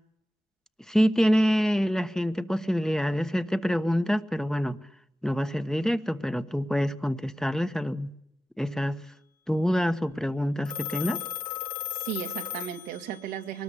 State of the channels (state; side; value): normal; both; correlation 0.93